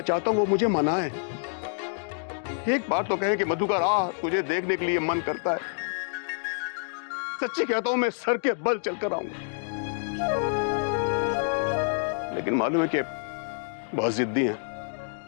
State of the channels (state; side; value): silent; right; digital silence